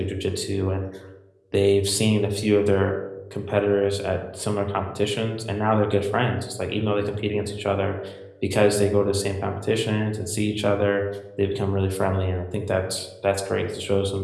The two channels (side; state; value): both; identical; correlation 1.00